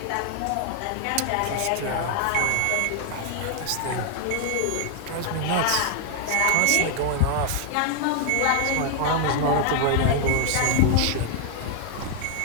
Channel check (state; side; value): different; both; correlation 0.00